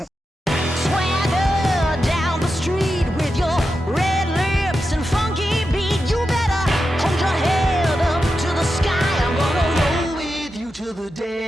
down the street with your red lips and funky beat. You better hold your head up to the sky. I'm gonna roll with you till the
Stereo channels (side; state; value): both; normal; correlation 0.89